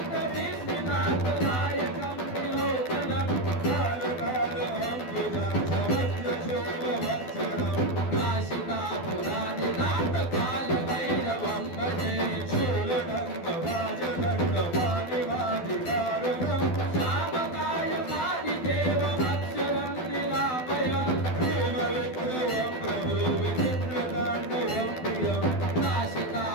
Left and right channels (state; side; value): late; right; 12 ms